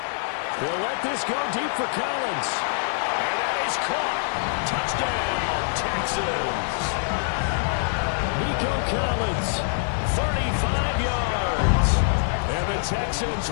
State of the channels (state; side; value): silent; right; 62 dB below the other